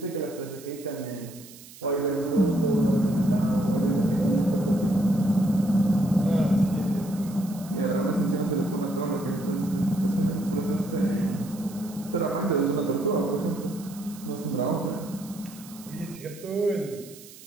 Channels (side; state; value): right; noise; hiss, 19 dB below the sound